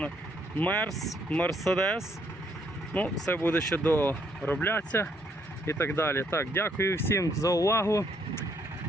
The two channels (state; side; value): normal; both; correlation 0.70